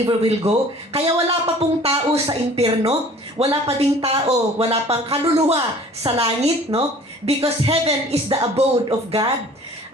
will go. Kaya wala pa pong tao sa impyerno, wala pa ding tao, wala pang kaluluwa sa langit, no? Because heaven is the abode of God.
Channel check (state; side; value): normal; both; correlation 0.49